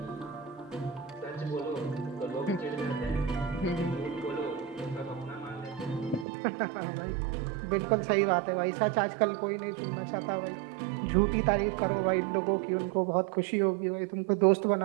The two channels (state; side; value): drops out; left; at 6.2 s